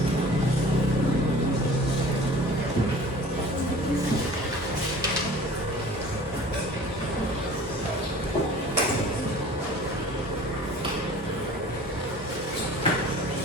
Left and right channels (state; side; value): normal; both; correlation 0.45